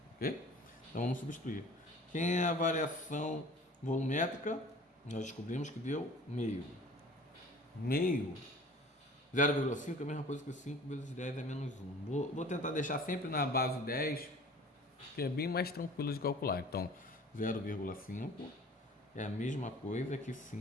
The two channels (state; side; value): normal; both; correlation 0.46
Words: Ok? Então vamos substituir. Quem é a variação volumétrica? Nós descobrimos que deu meio. Meio. 0,5 é a mesma coisa que 5 vezes 10 é menos 1. Vou tentar deixar sempre na base 10, que é bem mais tranquilo de calcular. Então, 0,5 é a mesma coisa que